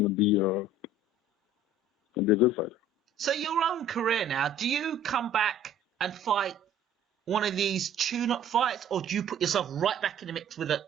be a good fighter. So your own career now, do you come back and fight one of these tune-up fights, or do you put yourself right back in the mix with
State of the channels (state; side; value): normal; both; correlation 0.50